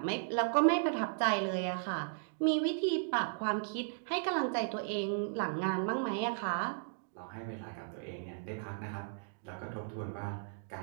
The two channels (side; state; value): left; silent; digital silence